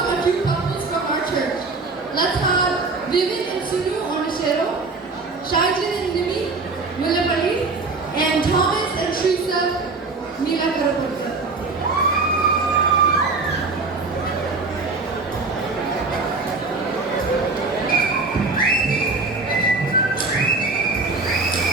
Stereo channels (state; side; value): quieter; left; 3.8 dB